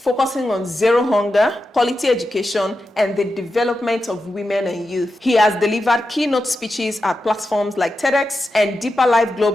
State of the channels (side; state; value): both; normal; correlation 0.90